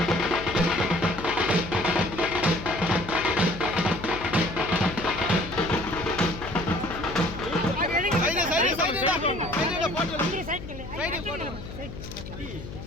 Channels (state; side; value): noise; left; hum, 11 dB below the sound